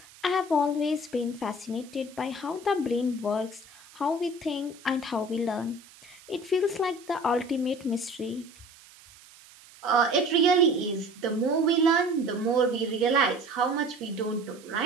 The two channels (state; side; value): noise; right; hiss, 23 dB below the sound